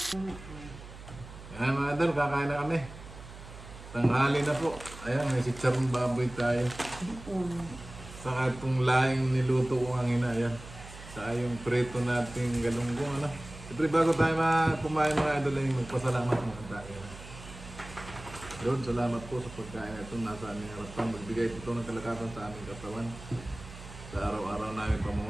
Ayan mga idol, kakain na kami. Tanghali na po. Ayan, may sitsarong baboy tayo. Saka itong laing niluto ko ang ina. Ayan. Saka yung preto nating galunggong. Siyempre bago tayo kumain mga idol, ay magpasalamat mga tayo. Yun, salamat po sa pagkain ito. Nasa aming harapan. Magbigay ito ng kalakasan sa aming katawan. Sa araw-araw namin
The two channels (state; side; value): noise; right; hum, 15 dB below the sound